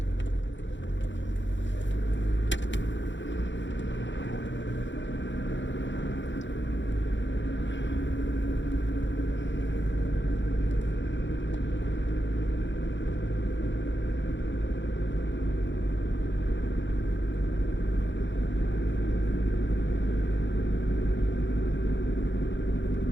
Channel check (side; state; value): right; late; 0.54 ms